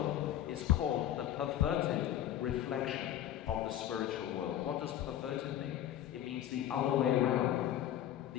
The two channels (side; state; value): right; quieter; 11.8 dB